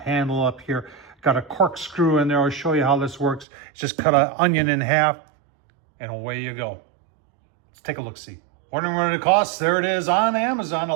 up here, got a corkscrew in there. I'll show you how this works. Just cut an onion in half and away you go. Let's take a look-see. Wondering what it costs? There it is on Amazon.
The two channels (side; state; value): left; drops out; at 3.5 s